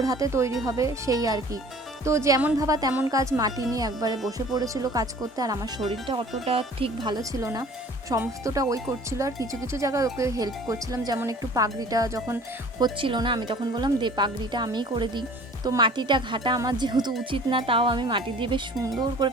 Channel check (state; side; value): normal; both; correlation 0.48